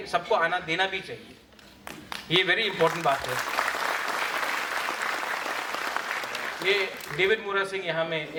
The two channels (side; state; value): both; identical; correlation 1.00